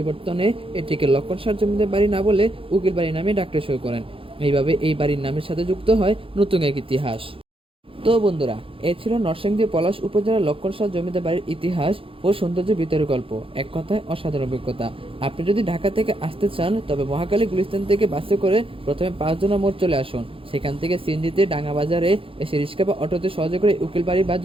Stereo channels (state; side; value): late; left; 0.26 ms